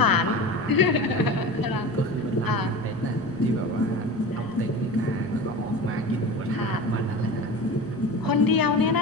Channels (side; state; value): both; normal; correlation 0.31